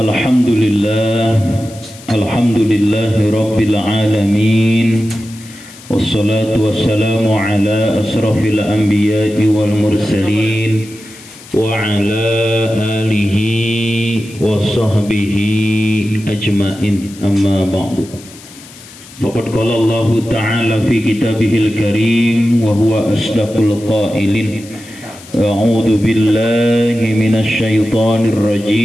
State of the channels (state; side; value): noise; left; hiss, 20 dB below the sound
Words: Alhamdulillahi rabbil alamin. Wassalatu wassalamu ala asrafil anbiya'i wal mursalin wa ala alihi wa sahbihi ajma'in, amma ba'du. Faqad qala Allah ta'ala fi kitabihil karim wa huwa asdaqul qailin. A'udzu billahi minasy syaithanir